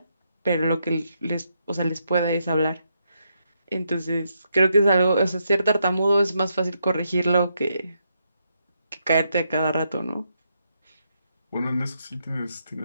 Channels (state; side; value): inverted; both; correlation -0.80